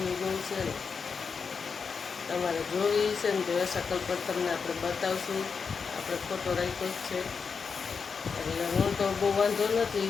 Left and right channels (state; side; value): quieter; right; 5.6 dB